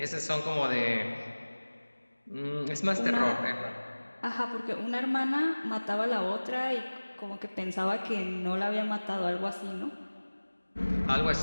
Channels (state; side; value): inverted; both; correlation -1.00